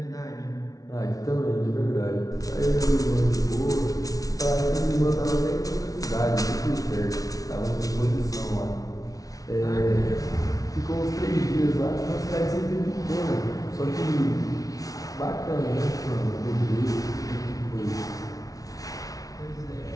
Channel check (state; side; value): late; right; 0.18 ms